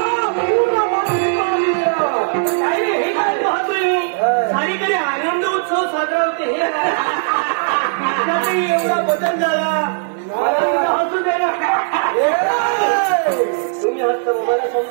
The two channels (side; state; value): left; silent; digital silence